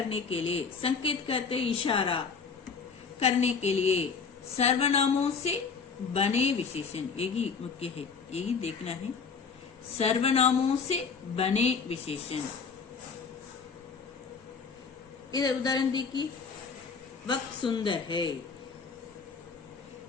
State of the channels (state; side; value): quieter; right; 5.5 dB